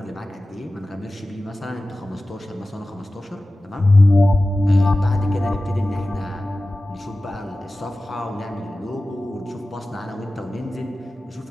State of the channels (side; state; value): both; normal; correlation 0.96